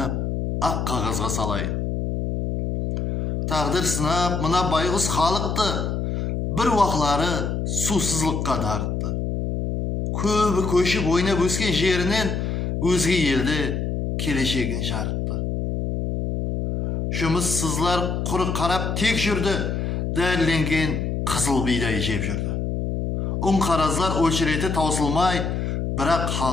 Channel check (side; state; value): left; noise; hum, 1 dB below the sound